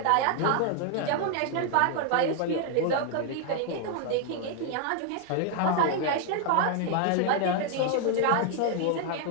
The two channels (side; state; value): both; different; correlation 0.00